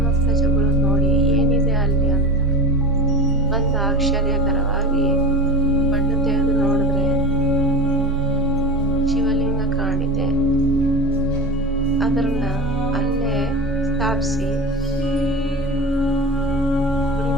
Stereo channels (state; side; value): normal; both; correlation 0.29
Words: ಪ್ರಜೆಗಳು ನೋಡಿ ಏನಿದೆ ಅಲ್ಲಿ ಅಂತ ಒಂದು ಆಶ್ಚರ್ಯಕರವಾಗಿ ಮಣ್ಣು ತೆಗೆದು ನೋಡಿದ್ರೆ ಶಿವಲಿಂಗ ಕಾಣಿದೆ. ಅದನ್ನ ಅಲ್ಲೇ ಸ್ಥಾಪಿಸಿ ಗುಡಿ